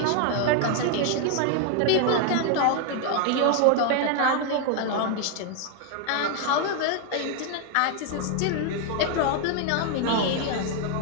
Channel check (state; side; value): different; both; correlation 0.00